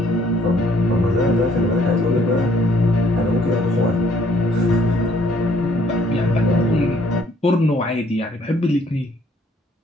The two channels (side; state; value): both; normal; correlation 0.63